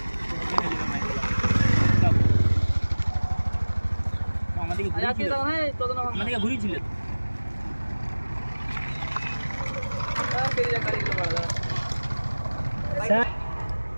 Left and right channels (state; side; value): inverted; both; correlation -1.00